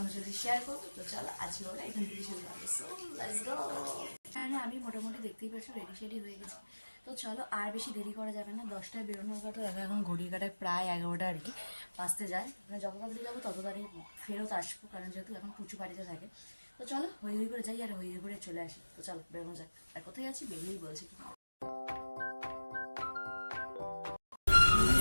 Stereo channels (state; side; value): inverted; both; correlation -1.00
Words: সাথে শেয়ার করবো। তো চলো আজকে ওরা এখান থেকে শুরু হবে। So let's go. হ্যাঁ আমি মোটামুটি দেখতেই পাচ্ছি রেডি শেডি হয়ে গেছি। তো চলো আর বেশি দেরি করা যাবে না। 10টায় বেরোনোর কথা দেখো, এখন ঘড়ির কাটায় প্রায় 11টা আর কি বাঁচতে যায়। মানে যত তাড়াতাড়ি যাবো তত তাড়াতাড়ি ফেরত আসবো, কারণ যেহেতু এখন পুচু বাড়িতে থাকে। তো চলো হই হই করে যাই আর হই হই করে চলে আসি। তো চলো বেরোনো যাক। আর কোথায় আছি বেরিয়েই বলছি।